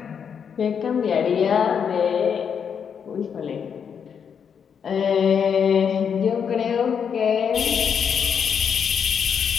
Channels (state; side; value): quieter; right; 7.2 dB